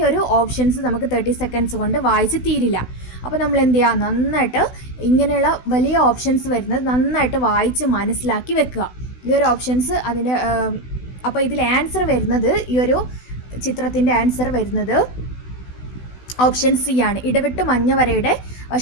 ഒരു ഓപ്ഷൻസ് നമുക്ക് 30 സെക്കൻഡ്സ് കൊണ്ട് വായിച്ച് തീരില്ല. അപ്പോൾ നമ്മൾ എന്ത് ചെയ്യുക? നന്നായിട്ട് ഇങ്ങനെയുള്ള വലിയ ഓപ്ഷൻസ് വരുന്നത് നന്നായിട്ട് വായിച്ച് മനസ്സിലാക്കി വെക്കുക. ഈ ഒരു ഓപ്ഷൻസ് അതിൻ്റെ അപ്പോൾ ഇതിൽ ആൻസർ വരുന്നത്, ഈ ഒരു ചിത്രത്തിൻ്റെ ആൻസർ വരുന്നത് ഓപ്ഷൻ സി ആണ്. ഇടവിട്ട് മഞ്ഞവരയുടെ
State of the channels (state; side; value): late; right; 16 ms